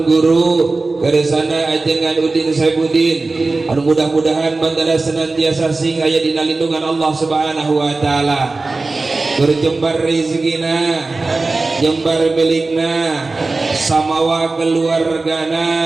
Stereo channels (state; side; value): quieter; left; 3.5 dB